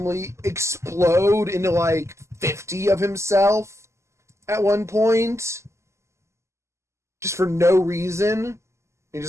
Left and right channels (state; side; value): late; left; 0.13 ms